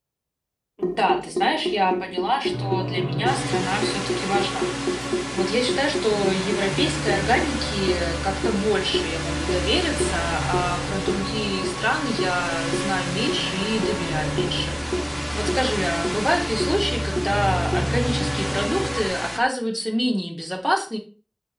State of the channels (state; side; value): identical; both; correlation 1.00